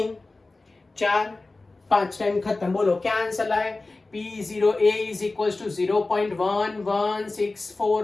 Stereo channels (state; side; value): quieter; right; 3.3 dB